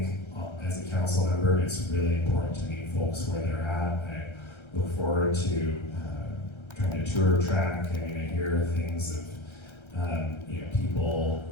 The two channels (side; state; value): right; late; 1.3 ms